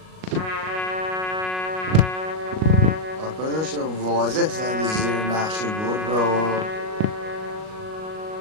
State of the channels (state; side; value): late; left; 38 ms